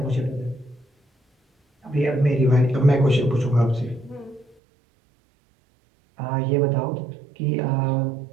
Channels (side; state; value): left; drops out; at 4.5 s